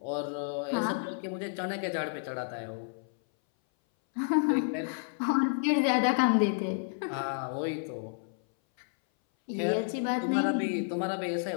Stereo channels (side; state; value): right; silent; 57 dB below the other